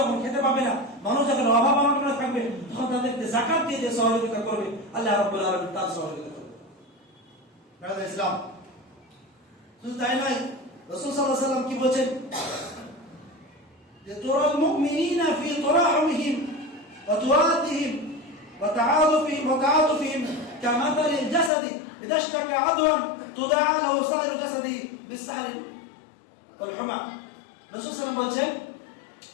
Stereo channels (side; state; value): right; drops out; at 21.5 s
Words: খেতে পাবে না, মানুষ যখন অভাব অনটনে থাকবে, তখন তাদেরকে যাকাত দিয়ে যে সহযোগিতা করবে আল্লাহ রাব্বুল আলামিন তার সহযোগিতা করবে। ব্রাদার ইসলাম, শুধু তাই নয়, রাসূল সাল্লাল্লাহু আলাইহি ওয়াসাল্লাম কি বলেন যে তুরাল মুমিনিনা ফি তুরাহিমিহিম ওয়া তুওয়াদিহিম ওয়া তাআতুফিহিম কামাথালিল জাসাদি ইযা ইশতাকা আদওয়ান তুদাআ লাহু সাইরু জাসাদি বিসসাহরি ওয়াল হুমা। রাসূল সাল্লাল্লাহু আলাইহি ওয়াসাল্লাম বলেন